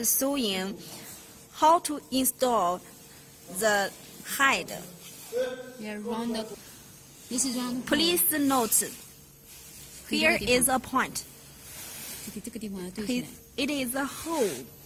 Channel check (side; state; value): both; identical; correlation 1.00